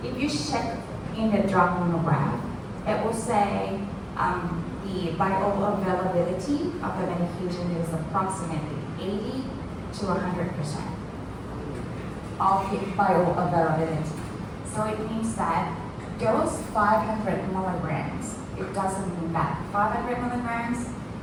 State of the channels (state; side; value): identical; both; correlation 1.00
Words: if you check in the drug monograph, it will say the bioavailability of the medication is approximately 80 to 100% of the bioavailability. So it means that those 500 milligrams, it doesn't mean that 500 milligrams,